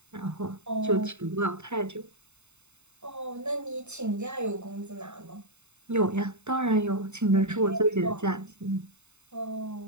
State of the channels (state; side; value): late; left; 0.82 ms